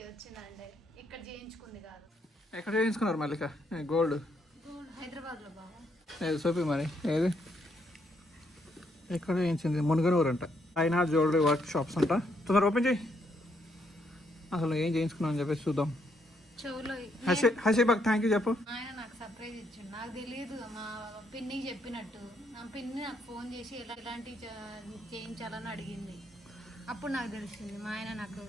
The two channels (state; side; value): normal; both; correlation 0.74